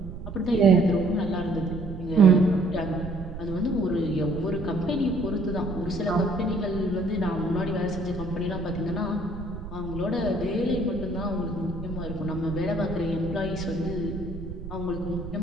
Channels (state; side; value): noise; right; rumble, 10 dB below the sound